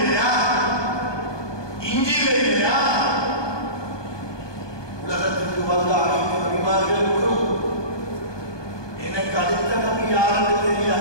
இஞ்சில இல்லையா? உலகத்துக்கு வந்த அனைத்து நபிமார்களுக்கும் எனக்கு அடுத்த நபி யாருன்னு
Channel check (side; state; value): right; late; 1.2 ms